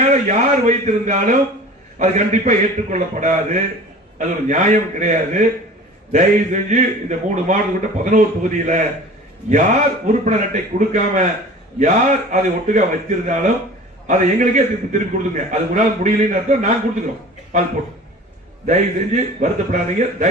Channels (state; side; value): normal; both; correlation 0.41